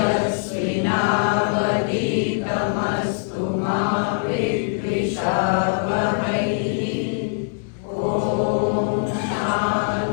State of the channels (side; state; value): right; silent; digital silence